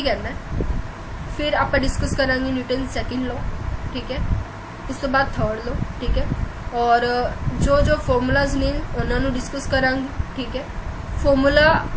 कहना है, फिर आप डिस्कस करांगे न्यूटन सेकंड लॉ। ठीक है। उस तो बाद थर्ड लॉ। ठीक है। और जो जो फॉर्मूलाज ने उन्होंने डिस्कस करांगे। ठीक है। फॉर्मूला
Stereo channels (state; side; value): identical; both; correlation 1.00